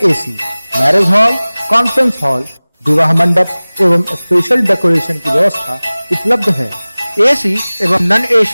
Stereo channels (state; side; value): inverted; both; correlation -0.99